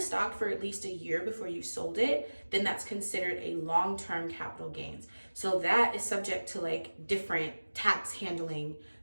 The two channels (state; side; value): inverted; both; correlation -1.00